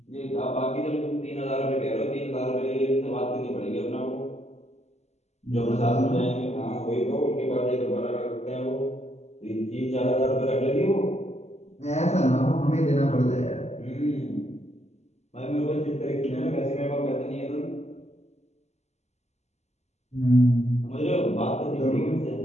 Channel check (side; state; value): right; late; 0.32 ms